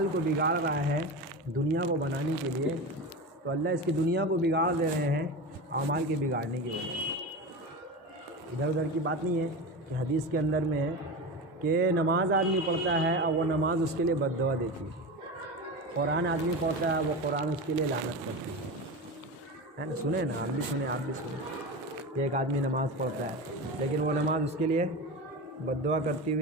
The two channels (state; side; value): normal; both; correlation 0.25